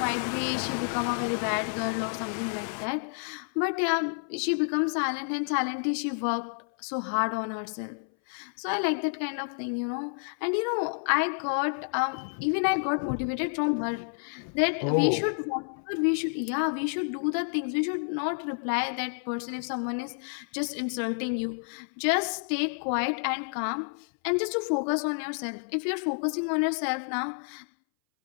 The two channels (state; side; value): silent; right; 58 dB below the other